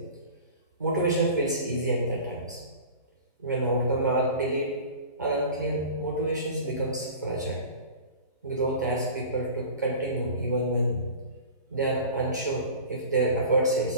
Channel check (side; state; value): both; inverted; correlation -0.38